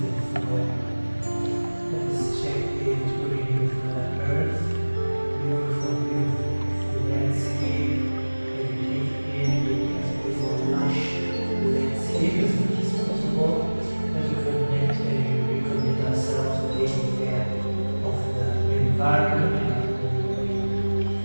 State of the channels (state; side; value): inverted; both; correlation -1.00